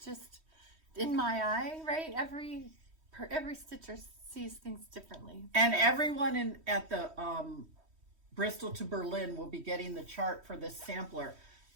just in my eye, right? Every stitcher sees things differently. And everyone at the Bristol to Berlin will be getting the chart for this sampler.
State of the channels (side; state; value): left; late; 3.1 ms